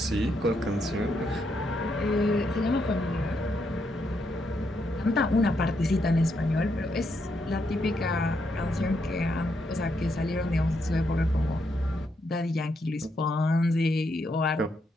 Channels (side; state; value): both; normal; correlation 0.79